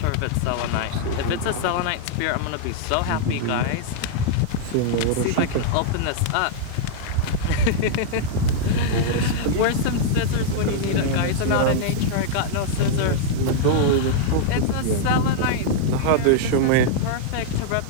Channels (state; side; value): different; both; correlation -0.01